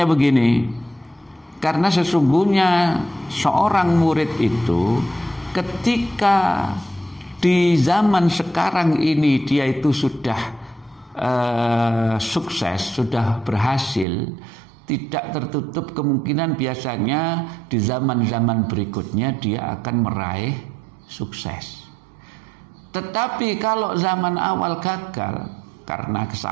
begini, karena sesungguhnya seorang murid itu ketika di zaman sekarang ini dia itu sudah sukses, sudah berhasil, tidak tertutup kemungkinan biasanya di zaman-zaman berikutnya dia akan meraih sukses. Tetapi kalau zaman awal gagal karena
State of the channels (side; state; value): left; drops out; at 14.1 s